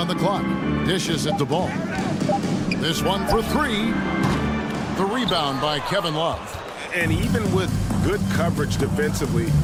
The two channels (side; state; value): both; identical; correlation 1.00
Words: the clock. Dishes at the Ball. This one for 3. The rebound by Kevin Love. And even with good coverage defensively